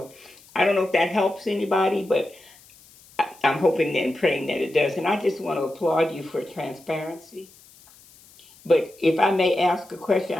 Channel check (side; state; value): left; noise; hiss, 25 dB below the sound